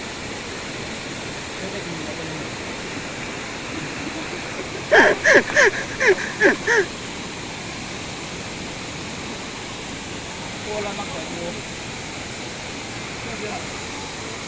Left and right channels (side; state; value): both; identical; correlation 1.00